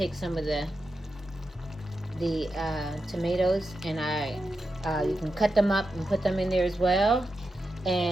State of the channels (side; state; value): both; normal; correlation 0.89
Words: some of the tomatoes, and you can cut them up and put them in there as well.